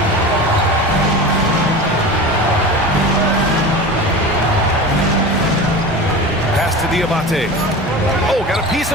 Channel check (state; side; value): normal; both; correlation 0.31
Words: Pass to Diabate. Oh, got a piece